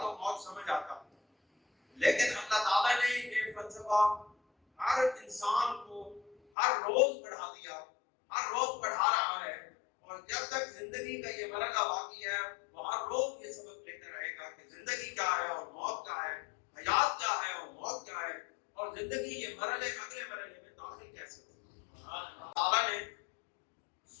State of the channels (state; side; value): drops out; right; at 6.4 s